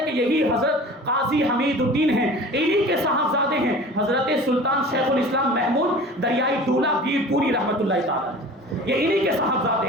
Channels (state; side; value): normal; both; correlation 0.40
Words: کہ یہی حضرت قاضی حمید الدین ہیں، انہی کے صاحبزادے ہیں حضرت سلطان شیخ الاسلام محمود دریائی دولہ پیر پوری رحمۃ اللہ تعالی. یہ انہی کے